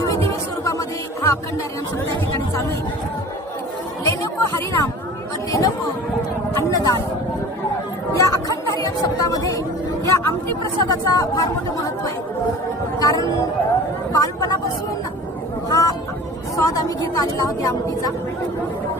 स्वरूपामध्ये हा अखंड हरिनाम सप्ताह ठिकाणी चालू आहे. लेनको हरिनाम व देनको अन्नदान या अखंड हरिनाम सप्ताहामध्ये या आमटी प्रसादाचा फार मोठं महत्व आहे. कारण बालपणापासून हा स्वाद आम्ही घेत आलेला आहोत या आमटीचा.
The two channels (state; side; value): normal; both; correlation 0.41